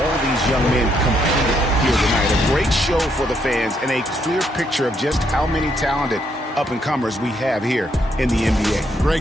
these young men competed here tonight. A great show for the fans and a clear picture of just how many talented up-and-comers we have here in the NBA.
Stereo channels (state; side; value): normal; both; correlation 0.74